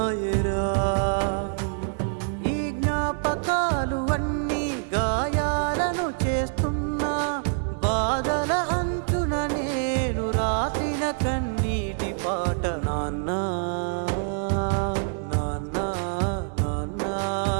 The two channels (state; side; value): silent; left; 61 dB below the other